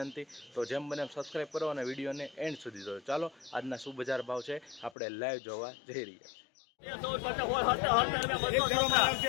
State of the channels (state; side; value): drops out; right; at 4.9 s